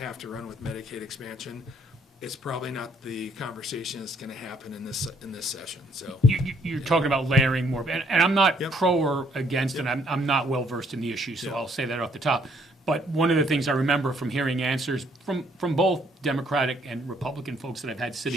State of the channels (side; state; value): both; normal; correlation 0.67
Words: to run with Medicaid expansion, it's probably not the conversation that's going to happen in this session. So You're talking about layering more, and I'm not Yep. pro or against, and I'm not well versed in the issue, so I'll say that off the top. But one of the things I remember from hearing answers from both Democratic and Republican folks that I've had